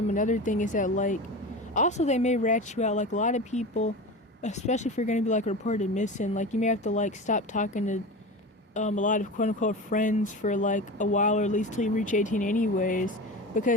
thing is that like, also they may rat you out. Like, a lot of people, especially if you're going to be like reported missing, like you may have to like stop talking to a lot of quote unquote friends for like a while, or at least till you reach 18 anyways,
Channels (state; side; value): normal; both; correlation 0.29